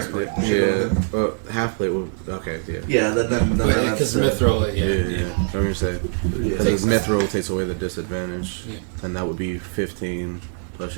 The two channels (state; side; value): silent; left; 64 dB below the other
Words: Yeah. Half plate would. Okay. Yeah. Yeah, then Because Mithril, Yeah. I'm gonna say Yeah. because Mithril takes away the disadvantage, Yeah. and that would be 15 plus